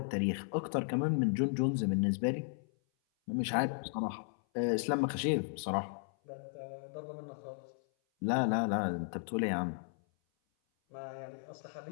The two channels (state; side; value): silent; right; 54 dB below the other